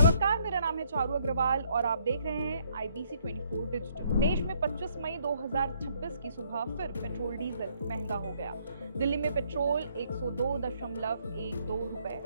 मेरा नाम है चारू अग्रवाल और आप देख रहे हैं IBC 24 डिजिटल। देश में 25 मई 2026 की सुबह फिर पेट्रोल डीजल महंगा हो गया। दिल्ली में पेट्रोल 102.12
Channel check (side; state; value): both; inverted; correlation -0.68